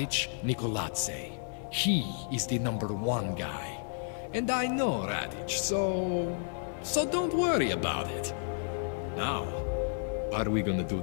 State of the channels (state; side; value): silent; right; 57 dB below the other